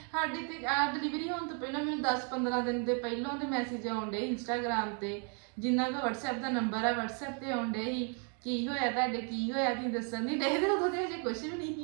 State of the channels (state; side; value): quieter; left; 40.0 dB